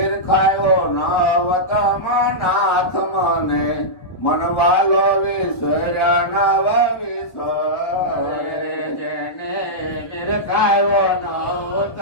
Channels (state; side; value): late; right; 1.2 ms